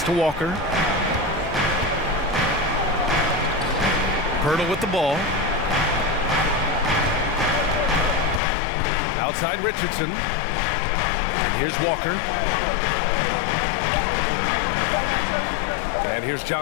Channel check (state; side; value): drops out; right; at 8.4 s